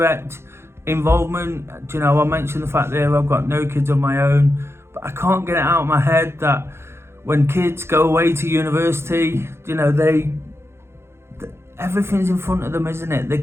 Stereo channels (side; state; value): left; late; 0.12 ms